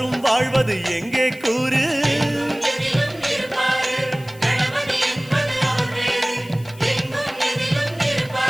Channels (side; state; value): left; noise; hiss, 23 dB below the sound